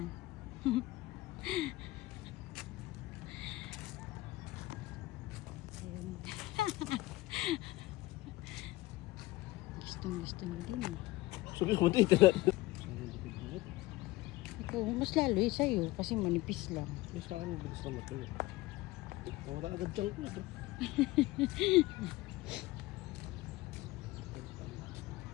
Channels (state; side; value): quieter; right; 19.2 dB